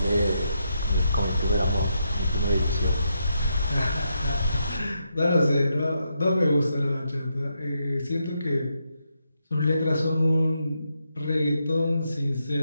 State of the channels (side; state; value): both; inverted; correlation -0.81